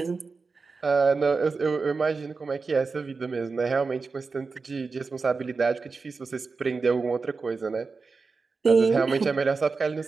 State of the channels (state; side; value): quieter; left; 4.4 dB